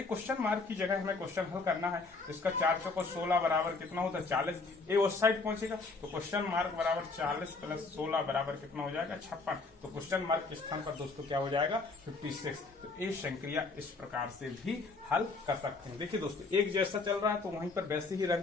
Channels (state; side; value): quieter; right; 3.9 dB